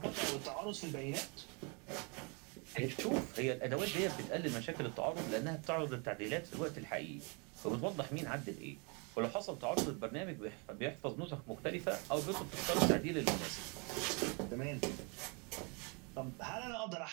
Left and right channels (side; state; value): left; quieter; 33.3 dB